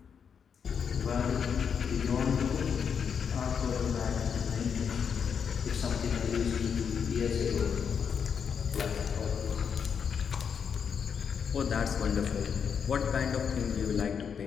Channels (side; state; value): right; quieter; 7.0 dB